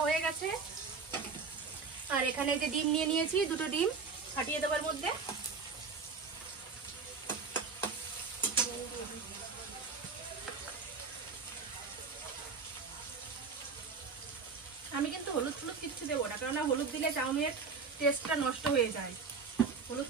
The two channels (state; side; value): quieter; left; 5.0 dB